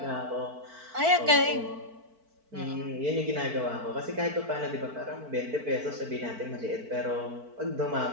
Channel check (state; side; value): late; left; 4.5 ms